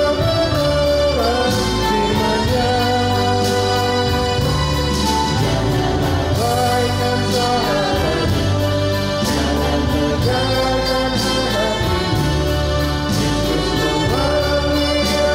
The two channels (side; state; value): both; identical; correlation 1.00